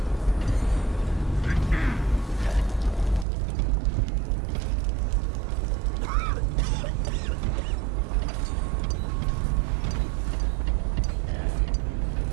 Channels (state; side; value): drops out; left; at 3.2 s